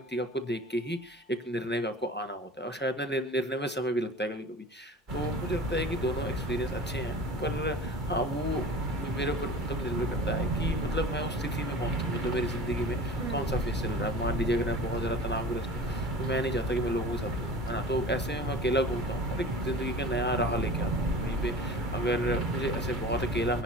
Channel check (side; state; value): both; normal; correlation 0.39